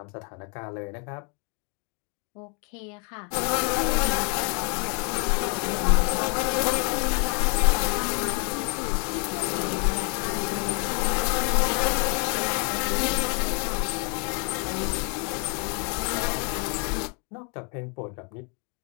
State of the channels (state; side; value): quieter; right; 37.8 dB